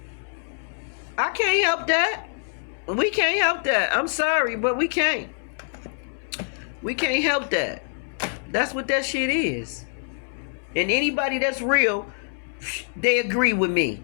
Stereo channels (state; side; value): silent; right; 62 dB below the other